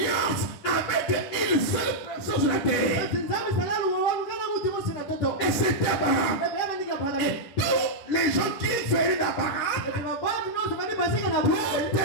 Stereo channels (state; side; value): late; right; 10 ms